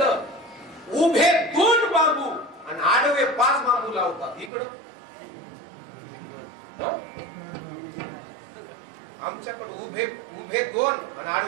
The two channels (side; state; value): left; drops out; at 4.5 s